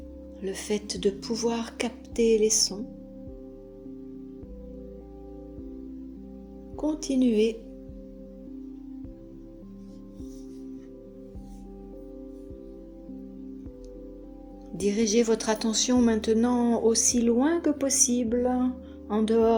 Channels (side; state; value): both; identical; correlation 1.00